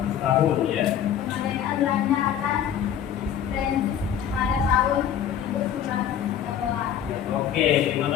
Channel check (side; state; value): right; quieter; 9.4 dB